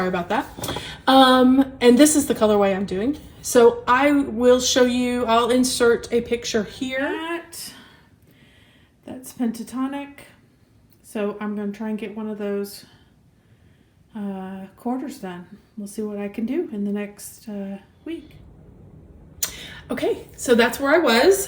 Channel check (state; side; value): identical; both; correlation 1.00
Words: about that. And this is the colorway I'm doing. So I will show you, I'll insert a picture here. That's Pentatonic. So I'm going to try and get one of those quarters done. We'll see what I can do in the next week. Okay, so that's where I